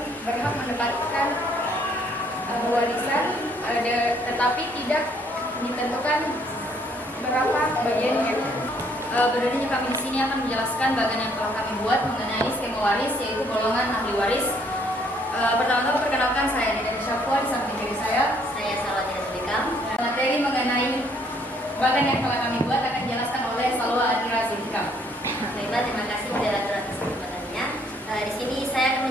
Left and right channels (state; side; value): normal; both; correlation 0.65